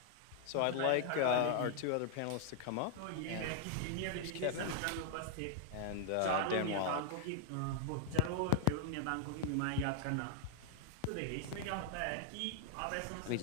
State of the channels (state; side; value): different; both; correlation 0.00